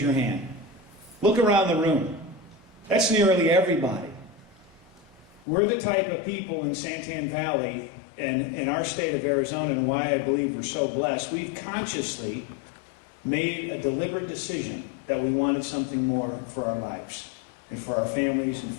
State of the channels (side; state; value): right; drops out; at 5.5 s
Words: hand. Look around the room. That's nearly everybody. We're the type of people in Santan Valley and in our state of Arizona, and why I believe we're so blessed. We've consciously made a deliberate decision that we wanted something more for our lives and for our families and